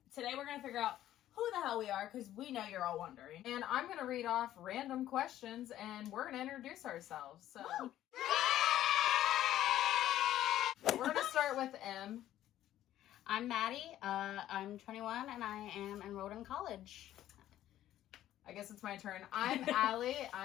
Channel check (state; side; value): quieter; right; 12.8 dB